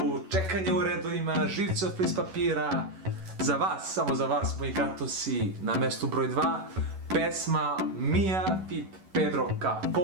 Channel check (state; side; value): late; left; 11 ms